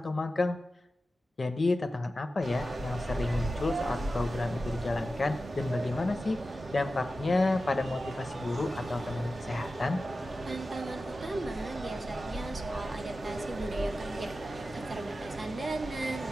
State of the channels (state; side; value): normal; both; correlation 0.93